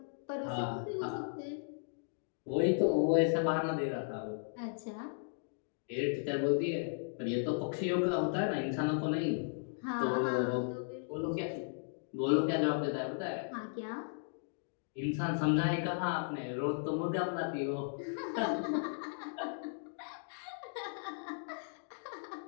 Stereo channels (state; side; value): silent; right; digital silence